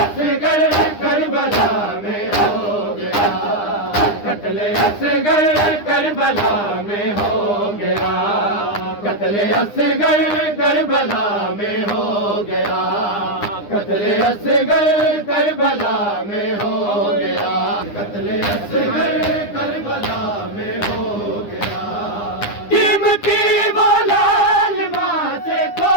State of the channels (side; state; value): right; late; 9.8 ms